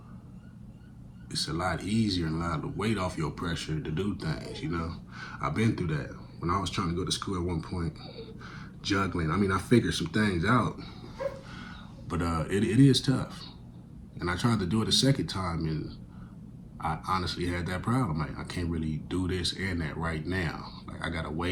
it's a lot easier and a lot of weight off your pressure to do things, I've been through that. When I was trying to go to school at one point, juggling, I figured some things out, but it is tough. And I tried to do it a second time, and I honestly had that problem. Like, I can't really do this and that right now. Like, I gotta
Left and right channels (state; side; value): identical; both; correlation 1.00